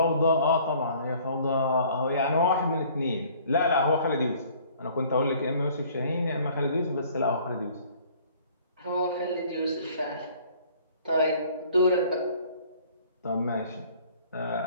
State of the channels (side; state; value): both; inverted; correlation -0.55